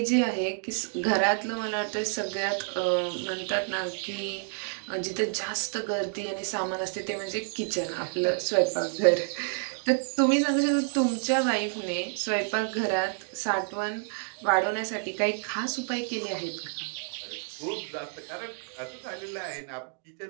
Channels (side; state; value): left; silent; 57 dB below the other